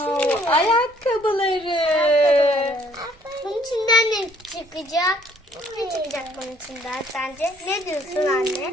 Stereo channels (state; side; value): normal; both; correlation 0.62